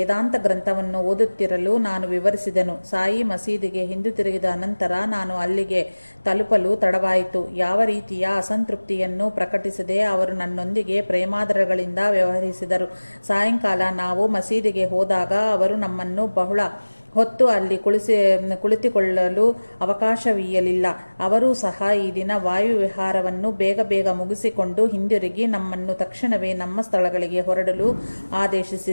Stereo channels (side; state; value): both; inverted; correlation -1.00